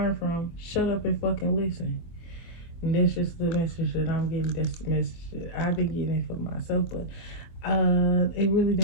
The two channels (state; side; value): late; right; 24 ms